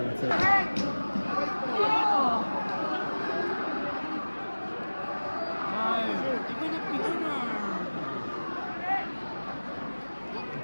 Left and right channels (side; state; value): both; inverted; correlation -1.00